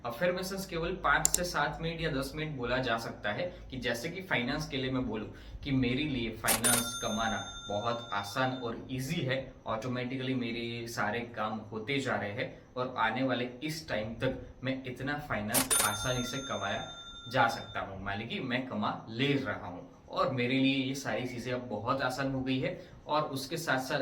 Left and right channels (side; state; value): both; identical; correlation 1.00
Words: अफर्मेशंस केवल 5 से 7 मिनट या 10 मिनट बोला जा सकता है। कि जैसे कि फाइनेंस के लिए मैं बोलूं कि मेरे लिए फाइनेंस कमाना बहुत आसान और इजी है, ऑटोमेटिकली मेरे सारे काम होते जा रहे हैं और आने वाले इस टाइम तक मैं इतना फाइनेंस आसानी से कमाया जा सकता हूँ, मान लीजिए मैं कमा ले रहा हूँ और मेरे लिए ये सारी चीजें अब बहुत आसान हो गई है। और उसके साथ साथ